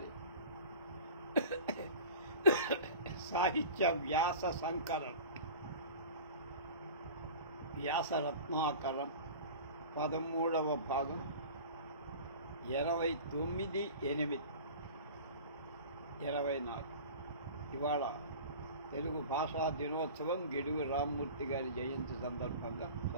సాహిత్య వ్యాస సంకలనం వ్యాసరత్నాకరం 13వ భాగం 29/8/24. ఇవాళ తెలుగు భాషా దినోత్సవం గిడుగు రామ్మూర్తి గారి జయంతి సందర్భంగా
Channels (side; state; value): both; inverted; correlation -0.38